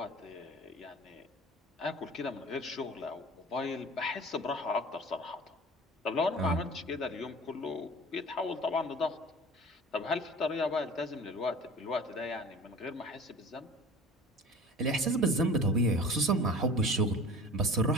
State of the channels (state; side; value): normal; both; correlation 0.41